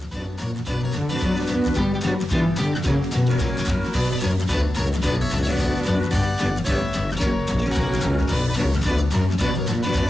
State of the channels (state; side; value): normal; both; correlation 0.92